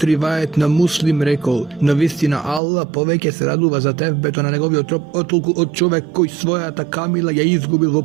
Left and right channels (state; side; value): drops out; left; at 2.6 s